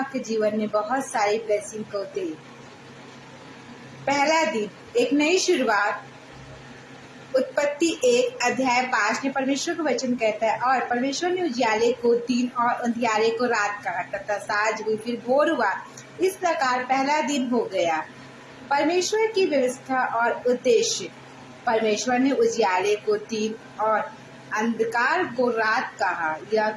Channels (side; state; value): both; identical; correlation 1.00